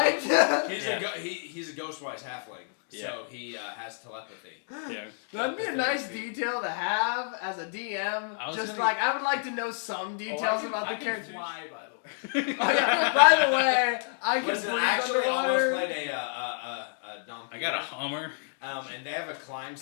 He's Yeah. he's a ghostwise halfling, so he has telepathy. Yeah. That'd be a 30 nice feet. detail to have as a DM. I was Just gonna- like I would like to know some details about I the can characters. fly, by the way. Oh, yeah. By the way, I can Listen, swim I actually underwater. almost played a Dompire. I got a Hummer. and they have a climb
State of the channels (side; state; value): right; silent; digital silence